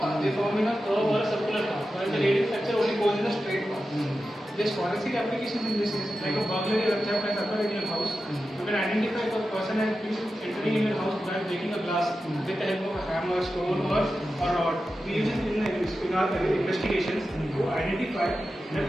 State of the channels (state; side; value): normal; both; correlation 0.92